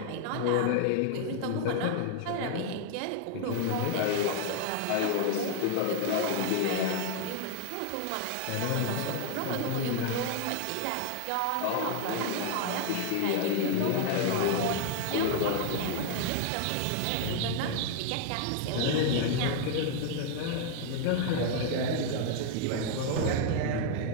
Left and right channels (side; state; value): both; different; correlation 0.00